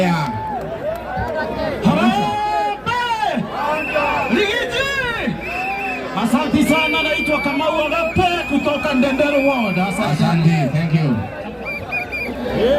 Harambee! Rigiji! Asante sana, naitwa Kamau Agape kutoka Ndendere Ward. Asante. Thank you.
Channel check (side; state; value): both; identical; correlation 1.00